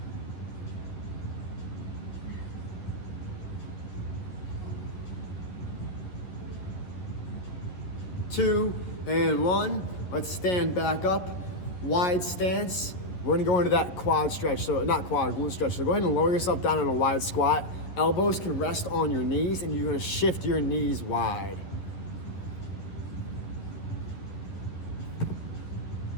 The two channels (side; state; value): right; late; 11 ms